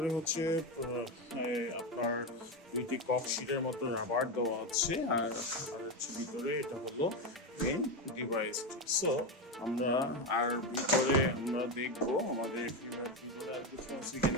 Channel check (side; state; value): both; normal; correlation 0.13